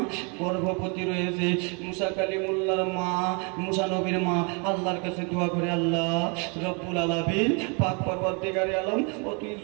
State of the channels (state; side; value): quieter; left; 34.1 dB